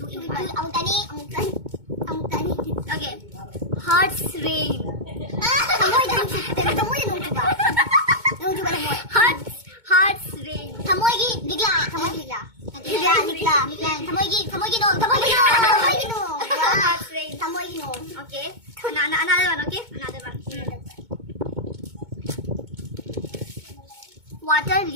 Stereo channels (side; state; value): left; late; 2.2 ms